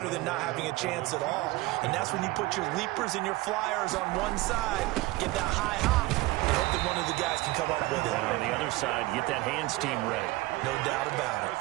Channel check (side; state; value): left; quieter; 20.0 dB